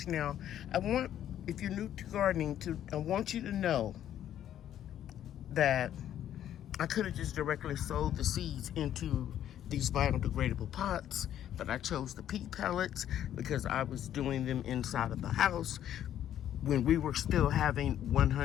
Now, if you're new to gardening, I want you to know that I could have just directly sowed the seeds into these biodegradable pots, but I chose the pea pellets because I was doing them inside of the house when we were still having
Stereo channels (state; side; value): quieter; right; 11.0 dB